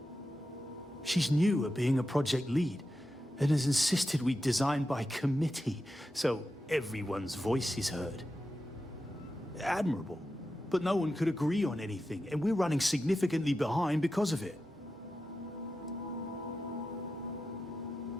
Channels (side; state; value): both; normal; correlation 0.90